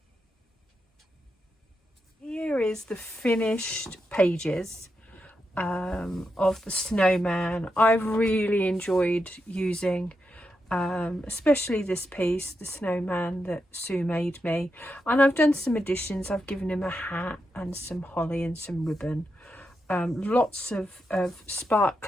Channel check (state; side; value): normal; both; correlation 0.86